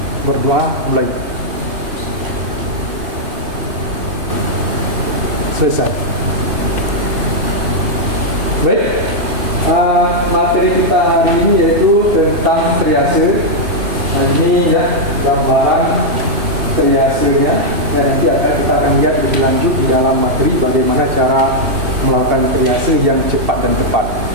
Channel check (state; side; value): late; left; 3.1 ms